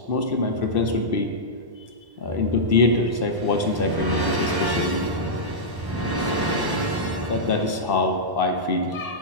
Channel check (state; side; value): late; left; 1.1 ms